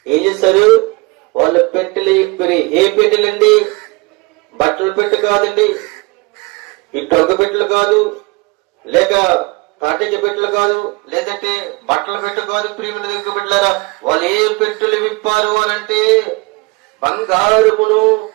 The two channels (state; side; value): quieter; left; 26.8 dB